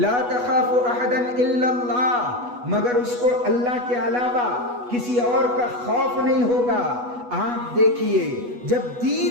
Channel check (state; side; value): late; left; 8.2 ms